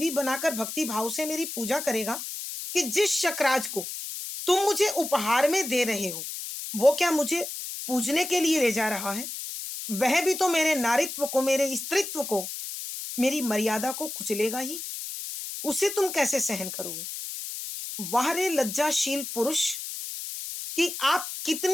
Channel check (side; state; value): left; noise; hiss, 7 dB below the sound